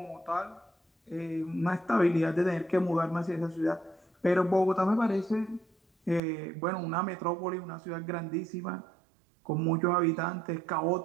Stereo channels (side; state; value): left; drops out; at 6.2 s